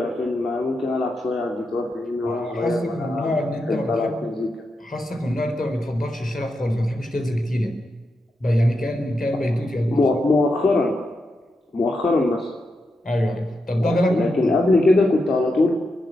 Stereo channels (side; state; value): both; normal; correlation 0.86